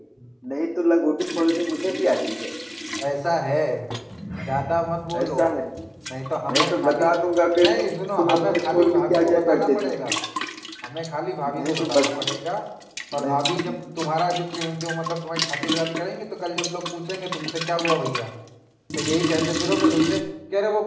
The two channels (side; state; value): both; identical; correlation 1.00